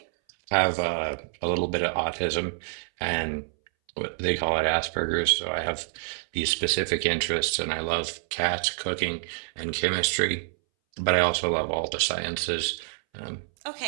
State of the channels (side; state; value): left; silent; 60 dB below the other